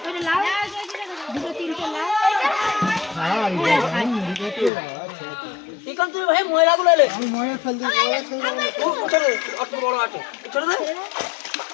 লাও দুটো তিনটে লাও হ্যাঁ ঠিক আছে তুই ভাই ময়লাগুলো এলে আমি ময়লা ফেল দিই ও ছোট অত বড় আছে ছোট দে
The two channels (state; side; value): drops out; right; at 4.7 s